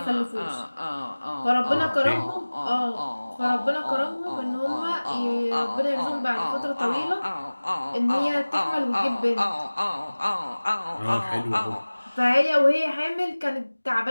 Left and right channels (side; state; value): both; inverted; correlation -1.00